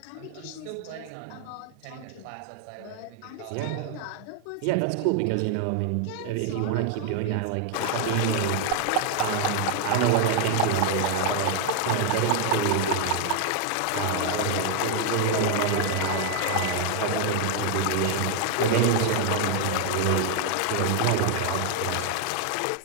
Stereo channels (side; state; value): both; different; correlation 0.00